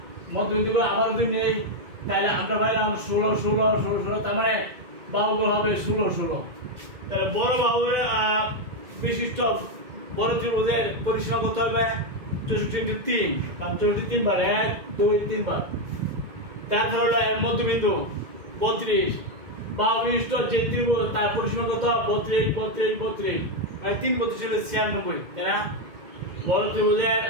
মধ্যবিন্দুগুলো আবার যদি নেই তাহলে আমরা পাইলাম 16, 16, 16, 16, তার মানে বাহুগুলো হবে 16, 16। তাহলে বড় বাহুর বিশিষ্ট বড় ত্রিভুজের পরিসীমা কত হবে? 64 × 3, কারণ 64 3 বার, 1 2 3 বার। তারপর হলো মধ্যবিন্দু 32, বাহু বিশিষ্ট যে ত্রিভুজ তার পরিসীমা কত? 32, 32, 32, মানে 3 32 হলো 96, তাই না? বড় ত্রিভুজের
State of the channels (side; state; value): left; late; 2.1 ms